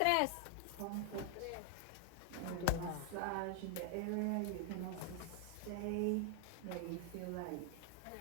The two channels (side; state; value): both; different; correlation 0.00